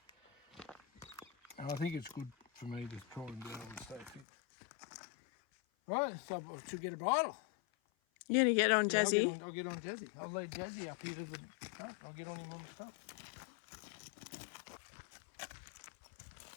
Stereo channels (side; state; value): right; drops out; at 4.2 s